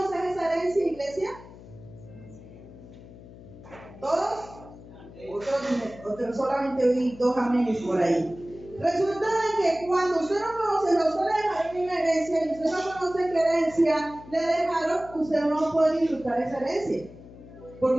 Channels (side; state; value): left; noise; hum, 18 dB below the sound